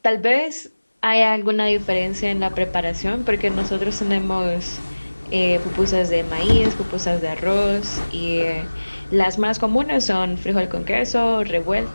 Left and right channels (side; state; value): both; inverted; correlation -1.00